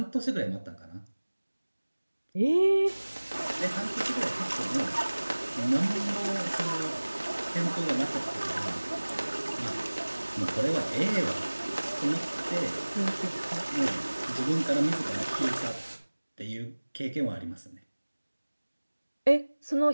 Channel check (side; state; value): both; inverted; correlation -1.00